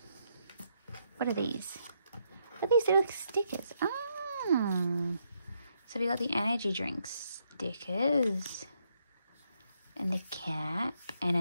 What are these? What are these little stickers? Oh. So we got the energy drinks stickers. And the cap. And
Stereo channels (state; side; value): inverted; both; correlation -0.76